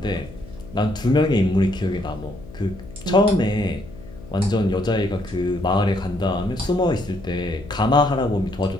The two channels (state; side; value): noise; left; hum, 17 dB below the sound